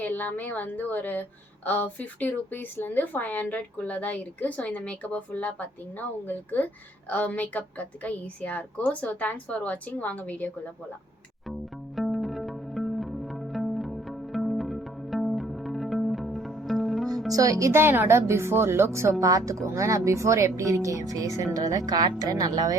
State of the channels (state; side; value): normal; both; correlation 0.63